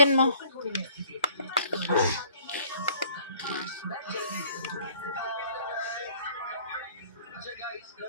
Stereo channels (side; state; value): both; inverted; correlation -0.56